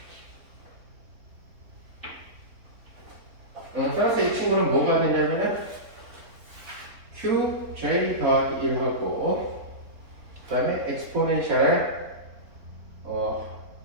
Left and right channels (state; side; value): late; left; 3.9 ms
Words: 따라서 이 친구는 뭐가 되냐면은 qj 더하기 1하고 그 다음에 엑스포넨셜